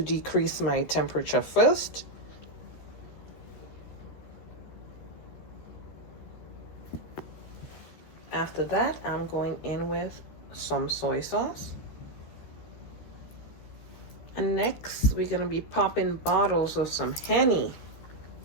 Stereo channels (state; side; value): late; right; 14 ms